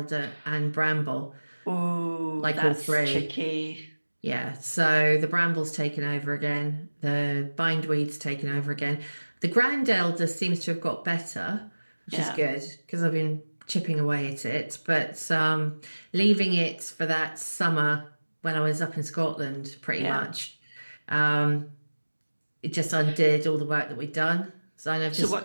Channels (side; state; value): both; inverted; correlation -1.00